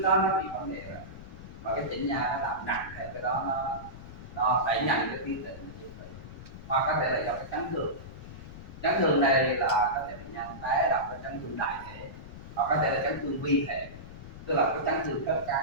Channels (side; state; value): left; noise; rumble, 14 dB below the sound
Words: đó nó bị vấn đề rồi và cái chỉnh nha nó làm nặng thì cái đó nó đẩy nhanh cái tiến trình chết tủy, hoặc có thể là do cái chấn thương này là có thể bệnh nhân té đập vào chấn thương đại thể, hoặc có thể là chấn thương vi thể, tức là cái chấn thương khớp